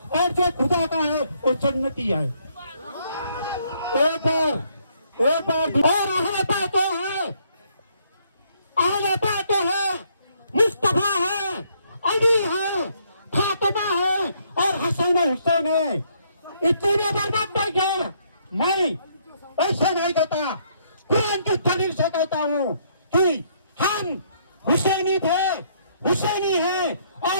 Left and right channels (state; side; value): inverted; both; correlation -0.69